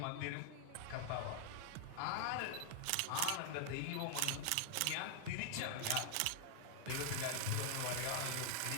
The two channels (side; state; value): both; different; correlation 0.00